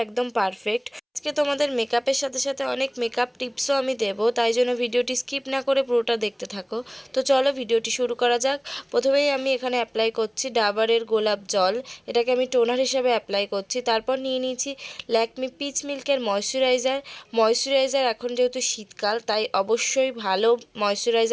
একদম পারফেক্ট। আজকে তোমাদের মেকআপের সাথে সাথে অনেক মেকআপ টিপসও আমি দেবো, তাই জন্য ভিডিওটি স্কিপ না করে পুরোটা দেখতে থাকো। তো চলো ভিডিওটি শুরু করা যাক। প্রথমেই আমি এখানে অ্যাপ্লাই করছি ডাবরের গোলাপ জল। এটাকে আমি টোনার হিসাবে অ্যাপ্লাই করছি। তারপর নিয়ে নিয়েছি ল্যাকমি পিচ মিল্কের ময়শ্চারাইজার। এখন যেহেতু শীতকাল, তাই অবশ্যই ভালো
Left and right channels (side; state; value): both; identical; correlation 1.00